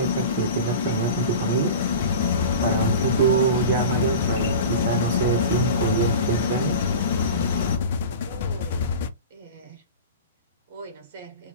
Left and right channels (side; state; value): both; inverted; correlation -0.33